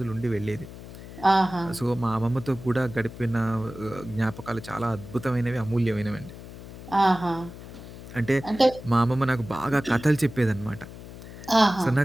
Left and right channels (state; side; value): noise; left; hum, 14 dB below the sound